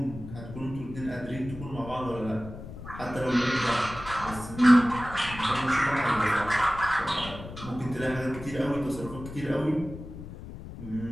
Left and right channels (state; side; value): noise; left; rumble, 12 dB below the sound